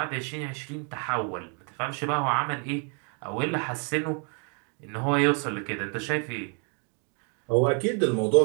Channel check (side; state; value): left; quieter; 39.1 dB